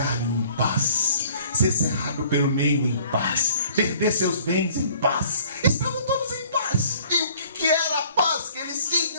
em paz, ser cerrado pelo meio em paz, perder seus bens em paz. Estavam todos em paz. E o que era a paz que eles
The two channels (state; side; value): inverted; both; correlation -0.54